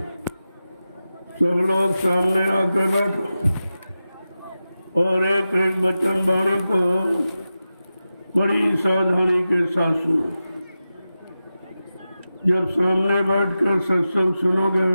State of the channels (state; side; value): inverted; both; correlation -0.93